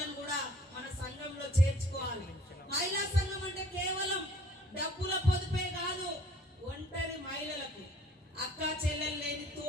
కూడా మన సంఘంలో చేర్చుకోవాలి. మహిళా సంఘం అంటే కేవలం డబ్బుల పొదుపే కాదు, ఒంటరి మహిళలకు, అక్క చెల్లెలు లేని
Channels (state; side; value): normal; both; correlation 0.55